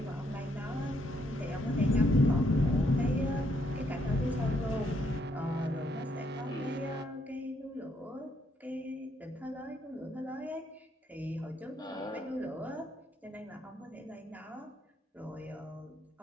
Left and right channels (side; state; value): both; normal; correlation 0.73